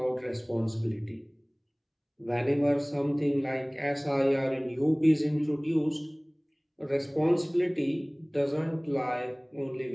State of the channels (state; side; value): identical; both; correlation 1.00